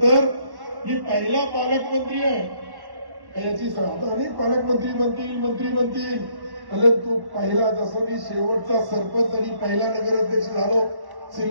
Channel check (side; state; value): left; late; 1.1 ms